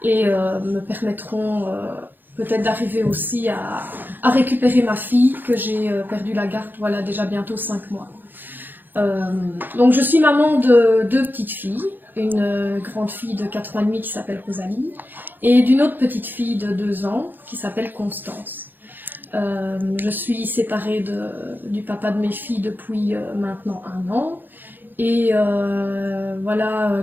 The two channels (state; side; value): late; left; 0.091 ms